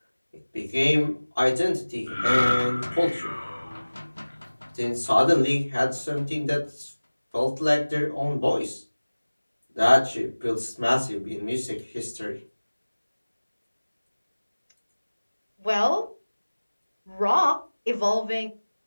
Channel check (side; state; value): both; inverted; correlation -1.00